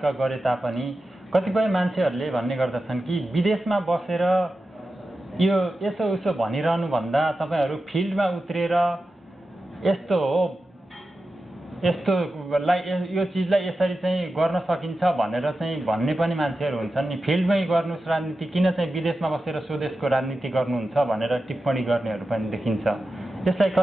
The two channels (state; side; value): normal; both; correlation 0.92